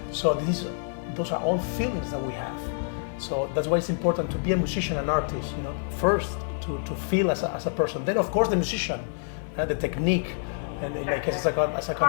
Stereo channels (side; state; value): right; silent; digital silence